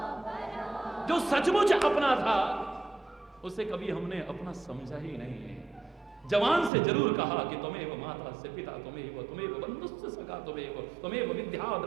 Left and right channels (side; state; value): left; drops out; at 6.7 s